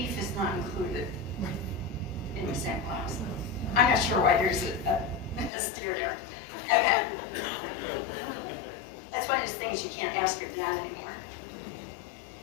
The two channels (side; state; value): right; drops out; at 5.5 s